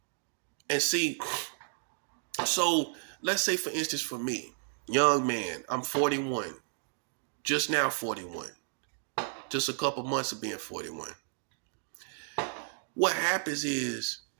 And see, so let's say, for instance, for me, young man, I'm 41, just now 41, just a couple months of being 41. What happens is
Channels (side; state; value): left; silent; digital silence